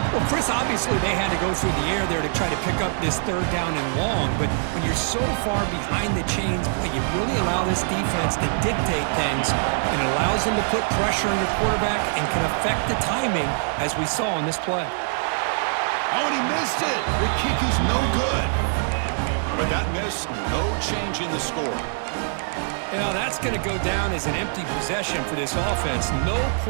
Well, Chris, obviously they had to go through the air there to try to pick up this third down and long, but when you're so far behind the chains, boy, you really allow this defense to dictate things, and it allows them to put pressure on your quarterback and can affect the timing, as we saw in this play. Oh, and he missed it. The kick is no good. With that miss, no change in the score. You know, that's going to go down as an empty possession for this offense. No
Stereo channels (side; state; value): left; silent; 63 dB below the other